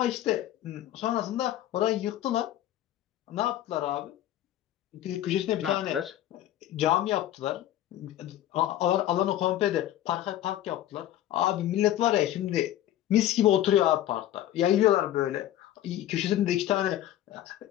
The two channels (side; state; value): right; quieter; 12.9 dB